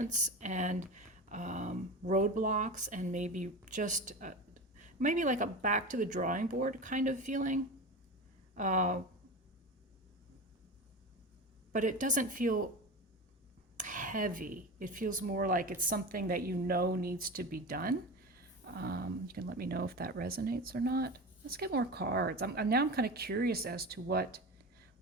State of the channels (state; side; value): normal; both; correlation 0.27